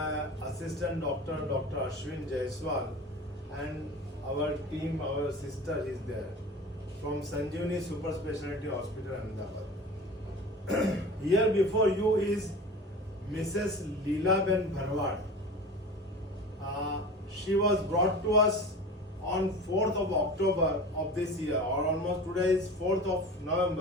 assistant doctor, Dr. Ashwin Jaiswal, and our team, our sister is there from Sanjeevani Super Speciality Hospital, Ahmedabad. Here before you is Mrs. Leela Ben Bharwad. She was brought to us on 4th of October of this year, or almost today is 4th of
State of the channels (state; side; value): normal; both; correlation 0.35